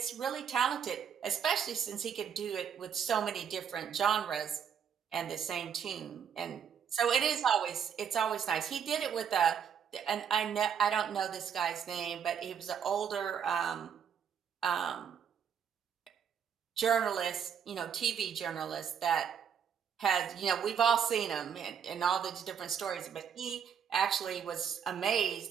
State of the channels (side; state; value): left; quieter; 7.8 dB